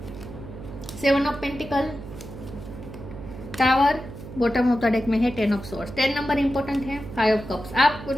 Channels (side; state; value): right; noise; hum, 13 dB below the sound